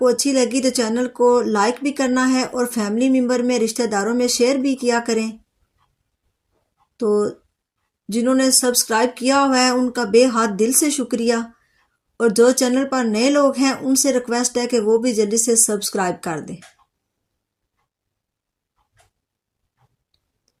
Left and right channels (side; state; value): both; identical; correlation 1.00